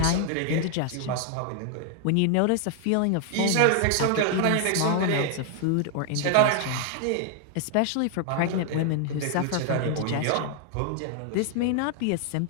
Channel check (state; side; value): different; both; correlation 0.00